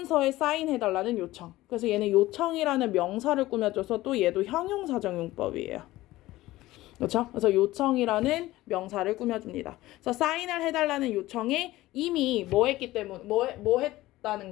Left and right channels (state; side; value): quieter; right; 17.1 dB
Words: 사인해달라는 요청. 그래서 얘는 요청이라는 명사를 꾸며줘서 또 얘도 형용사정용법이에요. 그렇죠? 그래서 요청이라는 명사를 꾸며줍니다. 그래서 사인을 해달라는 요청에 이미 뭐 했기 때문에 뭐 했다는